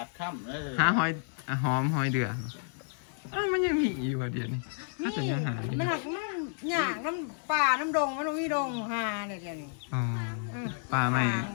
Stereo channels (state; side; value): silent; right; digital silence